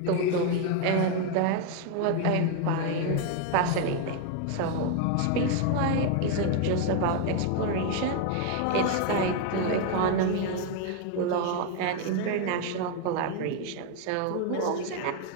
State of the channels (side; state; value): both; different; correlation 0.01